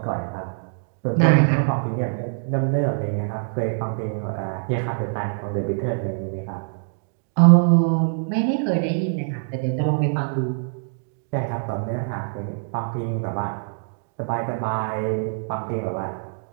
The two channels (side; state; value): left; silent; digital silence